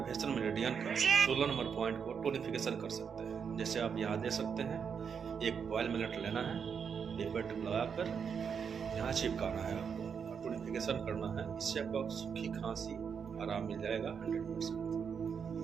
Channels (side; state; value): left; quieter; 6.7 dB